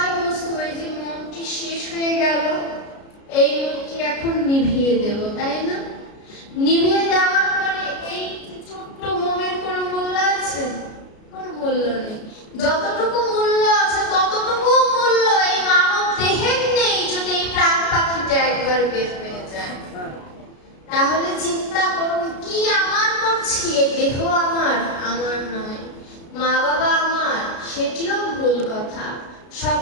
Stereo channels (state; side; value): late; right; 33 ms